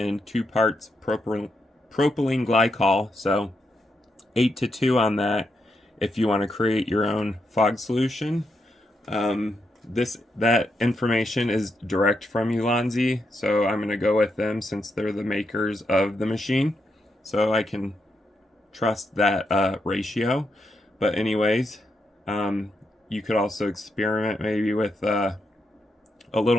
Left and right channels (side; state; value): both; normal; correlation 0.82